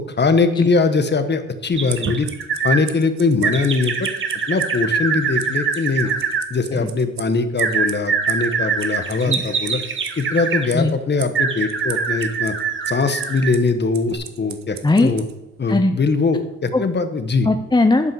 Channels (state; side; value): normal; both; correlation 0.51